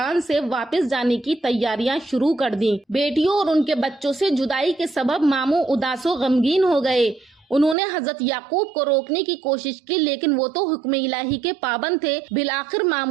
سے واپس جانے کی تیاریاں شروع کر دیں۔ بیٹیوں اور ان کے بچوں سے جدائی کے سبب ماموں اداس و غمگین ہو گئے۔ انہوں نے حضرت یعقوب کو روکنے کی کوشش کی، لیکن وہ تو حکم الہی کے پابند تھے۔ بالآخر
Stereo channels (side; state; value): left; drops out; at 7.8 s